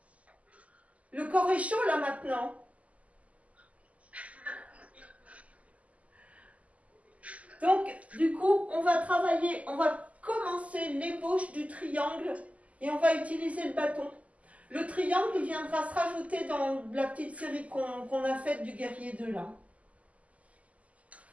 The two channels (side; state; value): left; late; 0.070 ms